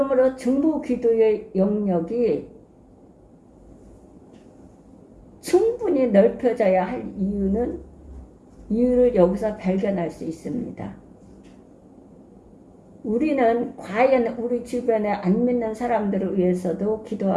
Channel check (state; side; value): identical; both; correlation 1.00